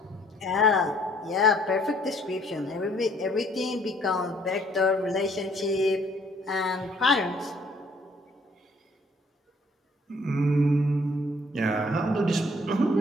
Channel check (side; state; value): both; normal; correlation 0.61